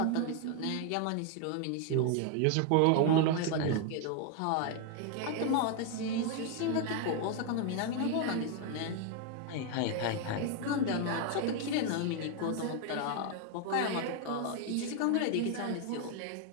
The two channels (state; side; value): different; both; correlation 0.00